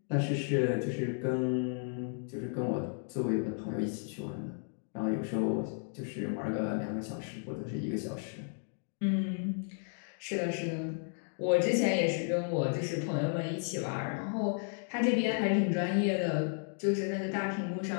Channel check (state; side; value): silent; right; 55 dB below the other